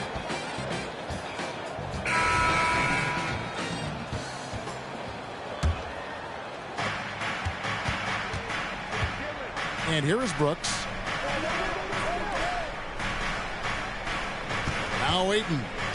And here is Brooks. Now Ayton.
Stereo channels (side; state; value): both; identical; correlation 1.00